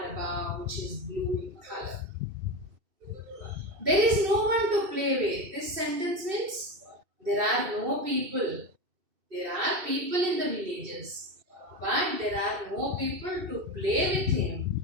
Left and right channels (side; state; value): left; late; 2.7 ms